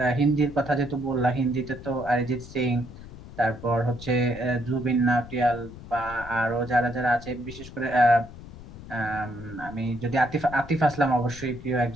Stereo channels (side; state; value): left; noise; rumble, 15 dB below the sound